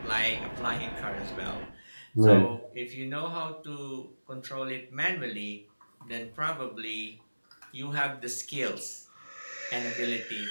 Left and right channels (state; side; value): inverted; both; correlation -1.00